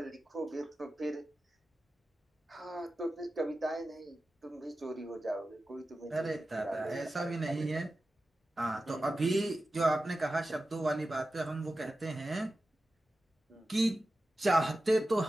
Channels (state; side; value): normal; both; correlation 0.93